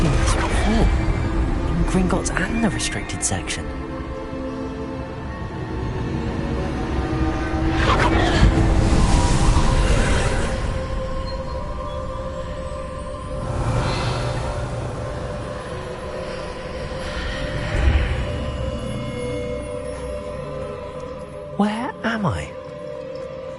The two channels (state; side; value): identical; both; correlation 1.00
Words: this before. In Gringotts and the restricted section. Where am I?